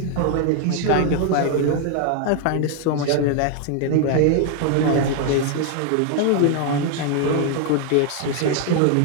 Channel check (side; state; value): both; different; correlation 0.00